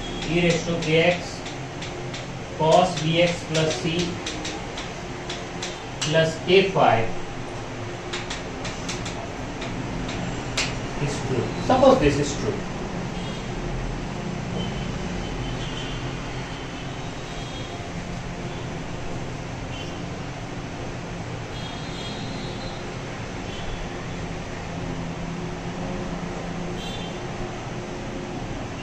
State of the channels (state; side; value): identical; both; correlation 1.00